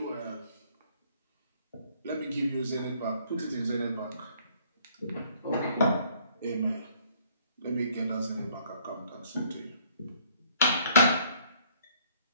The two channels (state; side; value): inverted; both; correlation -0.62